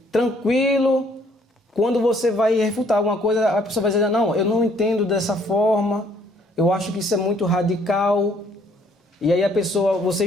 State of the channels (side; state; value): both; normal; correlation 0.63